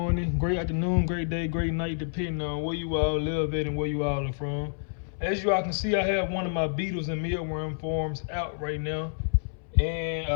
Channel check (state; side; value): silent; right; 59 dB below the other